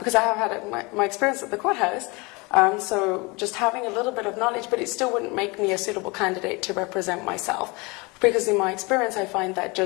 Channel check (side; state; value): right; quieter; 26.6 dB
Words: I have had my experience at the courthouse, so just having a little bit of knowledge, but it still wouldn't make me a suitable candidate to represent myself, because in my experience I find that